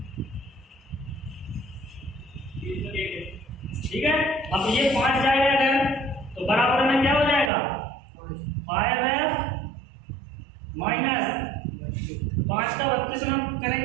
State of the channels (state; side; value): drops out; left; at 7.5 s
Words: ठीक है, अब ये 5 जाएगा अगर, तो बराबर में क्या हो जाएगा? 5F माइनस 5 का 32 में